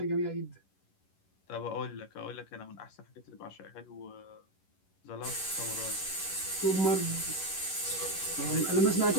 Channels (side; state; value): right; late; 11 ms